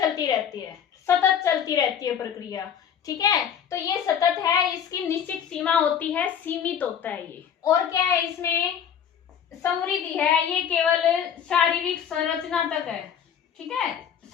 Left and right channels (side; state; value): right; quieter; 8.4 dB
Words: रहती है, सतत चलती रहती है प्रक्रिया, ठीक है, तो ये सतत है, इसकी निश्चित सीमा होती है, सीमित होता है ये। और क्या है इसमें, समृद्धि है, ये केवल शारीरिक संरचना तक है, ठीक है,